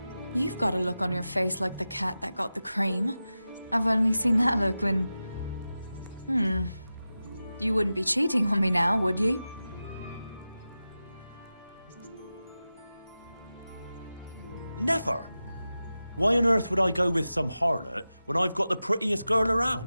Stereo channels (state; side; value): inverted; both; correlation -0.94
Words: You've got a look on your face like the cat that got the cream. I've only seen that look when... You wouldn't be cheating on me now, would you? Never. Why on earth would I go with some harlot when I've got the prettiest girl